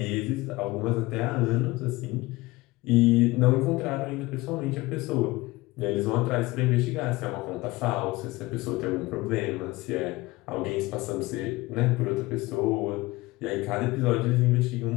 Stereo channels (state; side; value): quieter; right; 20.7 dB